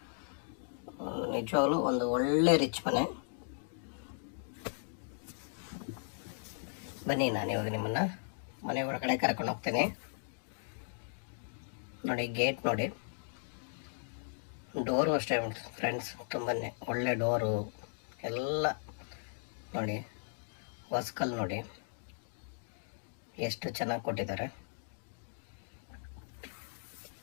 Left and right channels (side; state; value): right; silent; digital silence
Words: ನಿಜವಾಗ್ಲೂ ಒಂದು ಒಳ್ಳೆ ರಿಚ್ ಮನೆ. ಬನ್ನಿ, ನಾನು ಇವಾಗ ನಿಮ್ಮನ್ನು ಮನೆ ಒಳಗಡೆ ಕರ್ಕೊಂಡು ಹೋಗ್ತೇನೆ. ನೋಡಿ, ಗೇಟ್ ನೋಡಿ, ಡೋರು ಅಷ್ಟೇ ಫ್ರೆಂಡ್ಸ್, ತುಂಬಾ ಒಳ್ಳೆ ಡೋರು ಎಲ್ಲ ನೋಡಿ. ಹೊಸ್ಕಲ್ ನೋಡಿ ಎಷ್ಟು ಚೆನ್ನಾಗಿ ಕೊಟ್ಟಿದ್ದಾರೆ.